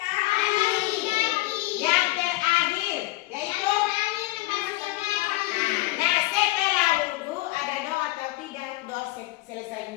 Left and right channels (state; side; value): quieter; right; 19.1 dB